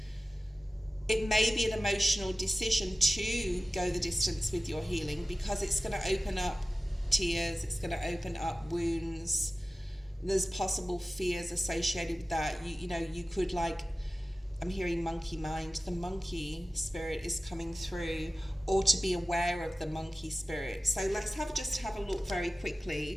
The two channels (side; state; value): both; normal; correlation 0.95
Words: It may be an emotional decision to go the distance with your healing, because it's going to open up tears. It's going to open up wounds. There's possible fears associated with that. You know, you could, like, I'm hearing monkey mind. The monkey spirit is coming through, or to be aware of the monkey spirit. So let's just have a look very